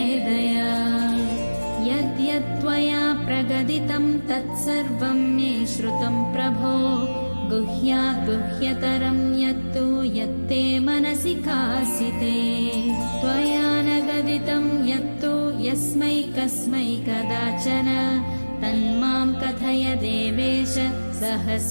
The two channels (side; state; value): both; inverted; correlation -1.00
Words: दया यद्यत्त्वया प्रगदितं तत्सर्वं मे श्रुतं प्रभो गुह्यात् गुह्यतरं यत्तु यत्ते मनसि कासिते त्वया न गदितं यत्तु यस्मै कस्मै कदाचन तन्मां कथय देवेश